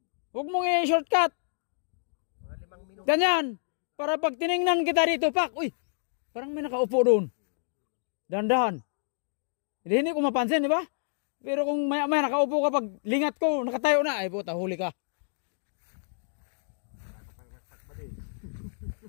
Huwag mong i-shortcut. Mga 5 minuto. Ganyan. Para pag tiningnan kita dito, pak, uy, parang may nakaupo doon. Dahan-dahan. Hindi ko mapansin, di ba? Pero kung maya-maya nakaupo ka, pag lingat ko, nakatayo na, ay puta, huli ka.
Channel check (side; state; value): right; silent; digital silence